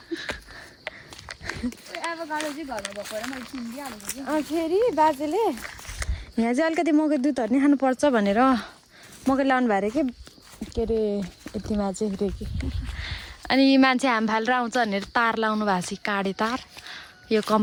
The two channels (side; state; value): both; identical; correlation 1.00